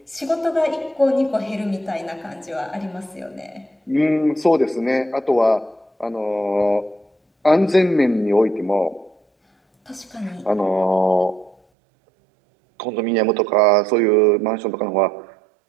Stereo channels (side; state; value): left; drops out; at 11.6 s